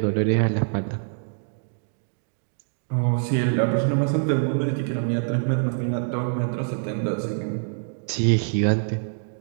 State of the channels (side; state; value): left; silent; digital silence